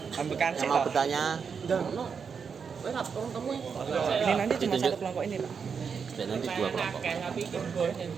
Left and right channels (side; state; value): left; quieter; 6.2 dB